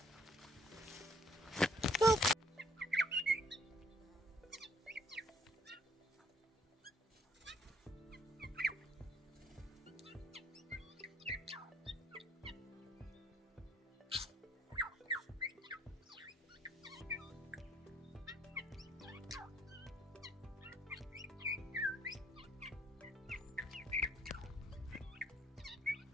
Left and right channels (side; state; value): both; normal; correlation 0.63